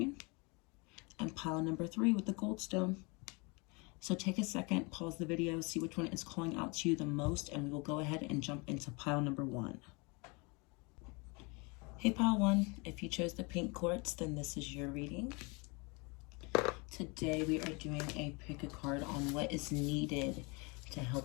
and pile number 3 with the goldstone. So take a second, pause the video, see which one is calling out to you the most, and we will go ahead and jump into pile number 1. Hey pile 1, if you chose the pink quartz, then this is your reading. Today we are doing a pick a card on what is needed to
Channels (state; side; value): quieter; right; 29.4 dB